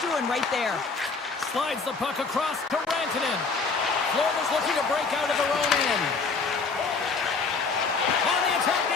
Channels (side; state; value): right; quieter; 4.5 dB